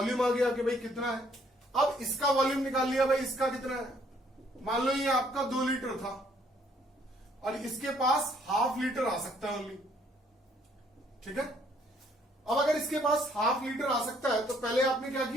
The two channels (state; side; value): normal; both; correlation 0.65